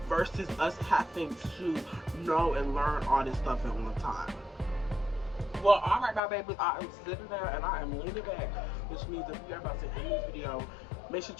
versus us having to know and learn all this stuff at one time. Well, alright, my babies, I am sitting there and I am leaning back, which means if you are about to end this video, make sure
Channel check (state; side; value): drops out; right; at 6.2 s